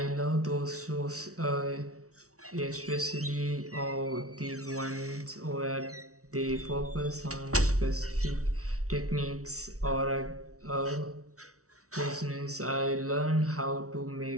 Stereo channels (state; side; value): late; left; 0.65 ms